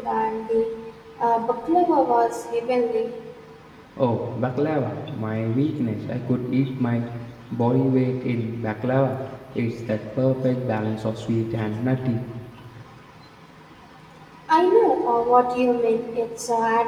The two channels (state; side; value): identical; both; correlation 1.00